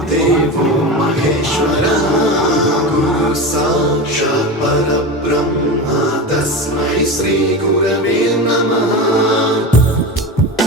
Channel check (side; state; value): both; normal; correlation 0.24